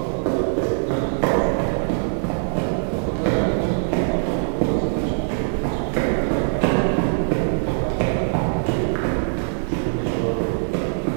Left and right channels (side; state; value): left; silent; digital silence